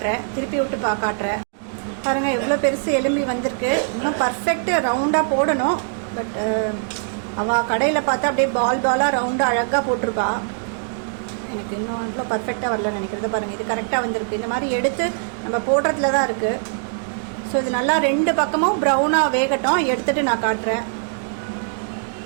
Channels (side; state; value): left; silent; digital silence